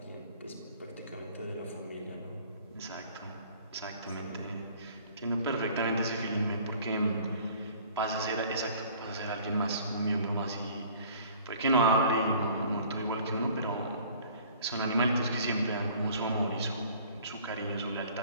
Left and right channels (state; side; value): inverted; both; correlation -0.52